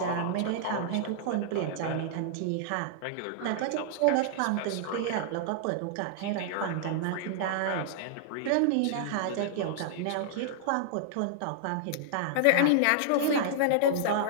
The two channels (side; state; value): both; different; correlation -0.01